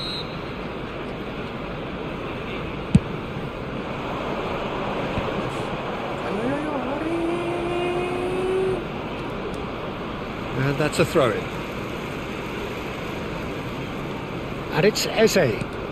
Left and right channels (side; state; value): both; identical; correlation 1.00